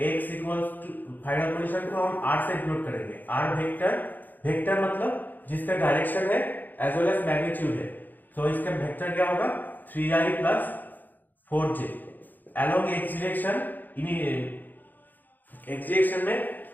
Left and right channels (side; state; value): right; late; 0.087 ms